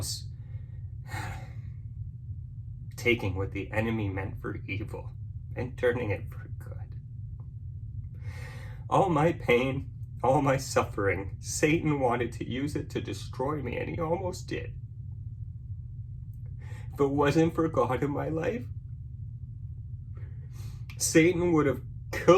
taking what the enemy meant for evil and turning it for good. All my pain, all my suffering, Satan wanted to use it to destroy me, and he almost did. If it wasn't for God in my life, Satan would have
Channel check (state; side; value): identical; both; correlation 1.00